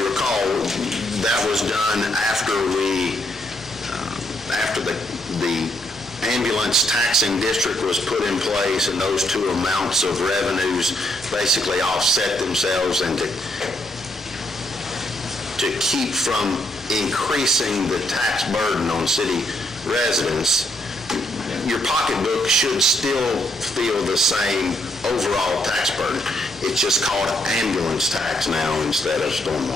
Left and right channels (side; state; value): both; normal; correlation 0.74